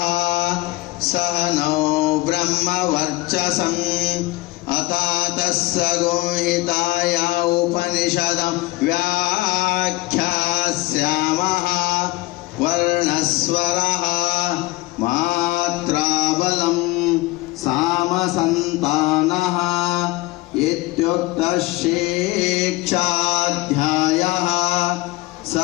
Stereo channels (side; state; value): right; quieter; 20.5 dB